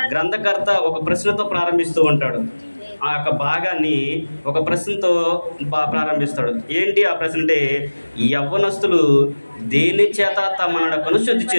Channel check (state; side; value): inverted; both; correlation -1.00